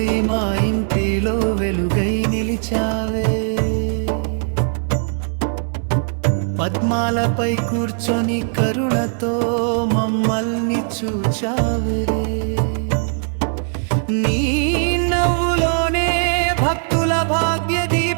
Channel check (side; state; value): left; silent; digital silence